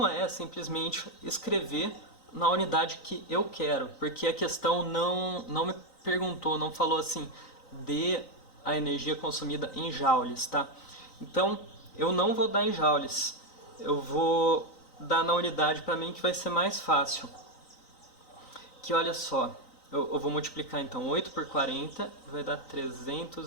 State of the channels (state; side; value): late; right; 3.9 ms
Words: é simplesmente escrever na unidade que eu quero, porque a questão não me perguntou, não falou assim, dê a energia consumida em joules, tá? Então, eu não vou dar em joules, eu vou dar na unidade para mim que vai ser mais fácil. Que olha só, eu vou multiplicar então 8 por 40, vai dar